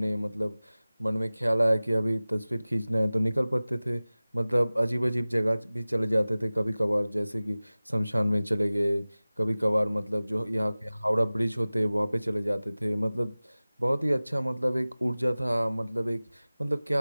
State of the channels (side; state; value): both; inverted; correlation -0.98